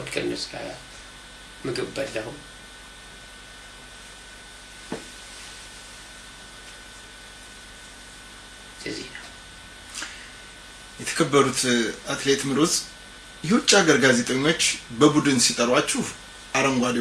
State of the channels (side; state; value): both; identical; correlation 1.00